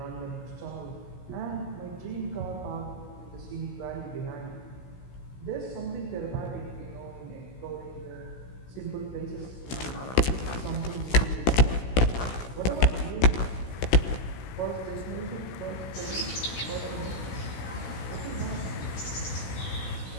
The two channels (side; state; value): right; late; 16 ms